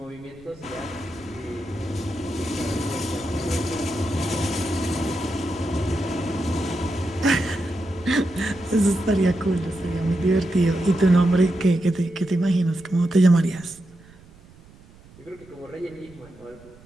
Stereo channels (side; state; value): right; noise; rumble, 24 dB below the sound